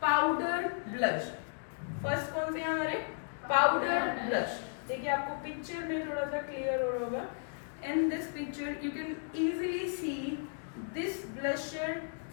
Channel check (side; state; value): right; silent; digital silence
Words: powder blush. First कौन से हैं हमारे? Powder blush. देखिए आपको picture में थोड़ा सा clear हो रहा होगा. In this picture you can easily see this blusher